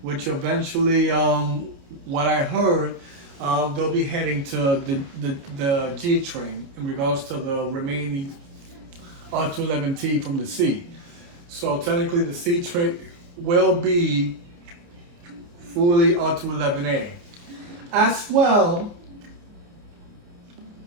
which eventually, what I heard, they'll be heading to the G train in regards to the remaining R211T from the C. So technically the C train will be fully R211A. As well,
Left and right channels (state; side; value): late; left; 29 ms